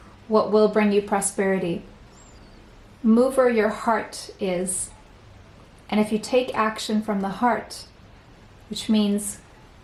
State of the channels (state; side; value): identical; both; correlation 1.00